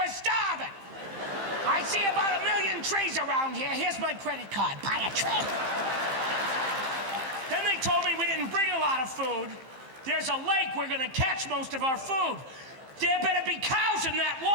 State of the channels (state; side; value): late; left; 15 ms